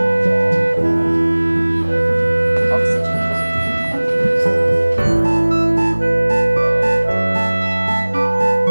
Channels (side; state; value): both; inverted; correlation -1.00